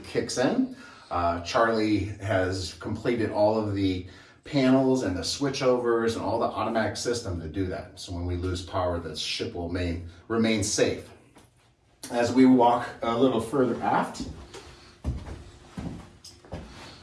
kicks in. Charlie has completed all of the panels and the switchovers and all the automatic system to do that. So when we lose power, the ship will remain safe. As we walk a little further aft,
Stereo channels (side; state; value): both; identical; correlation 1.00